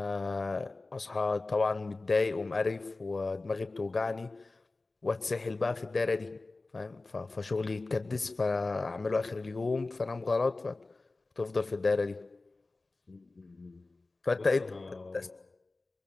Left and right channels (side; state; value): right; quieter; 3.4 dB